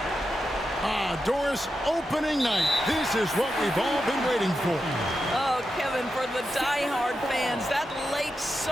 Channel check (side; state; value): both; normal; correlation 0.88